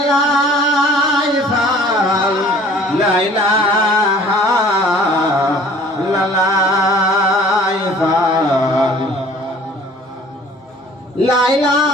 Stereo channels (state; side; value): normal; both; correlation 0.51